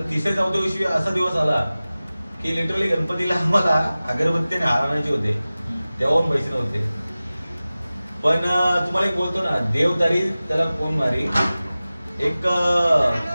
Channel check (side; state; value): both; inverted; correlation -0.97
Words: तिसऱ्या चौथ्या दिवशी असा दिवस आला की लिटरली गणपतीला आम्हाला अगरबत्तीने हार आणायचे होते, तेव्हा पण पैसे नव्हते. पण तुम्हाला एक बोलतो ना, देव तारी त्याला कोण मारी, एक